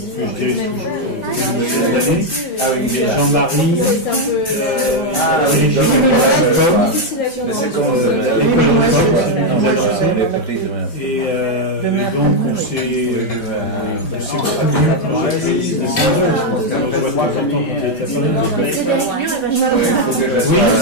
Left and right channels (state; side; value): late; right; 5.0 ms